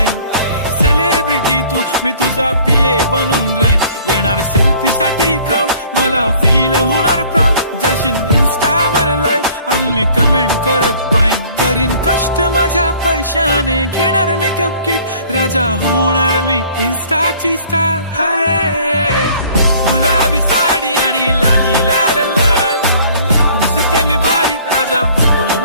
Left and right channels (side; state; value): both; inverted; correlation -0.54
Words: सेलिब्रिटी तू मी तुझा पीए बनून राहीन. येणार सेल्फी साठी क्राऊड मला फील होणार प्राऊड. जाशील इन्स्टावर लाईव्ह आणि मी कमेंट करत पाईन. करीन कष्ट माझ्या पैशाने घेणार मेकअप किट. राजा होणार मी इन्स्टाची स्टार. हाय गुलाबी साडी आणि लाली लाल लाल, दिसते मी भारी राजा फोटो